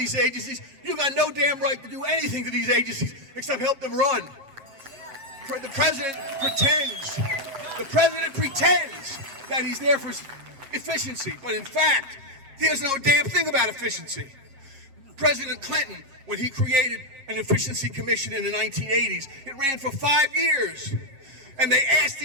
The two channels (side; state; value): left; late; 7.8 ms